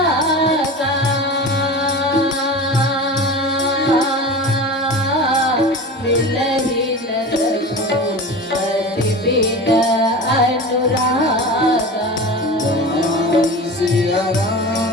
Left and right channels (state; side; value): normal; both; correlation 0.31